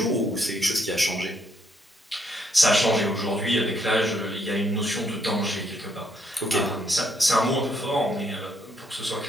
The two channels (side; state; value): both; normal; correlation 0.73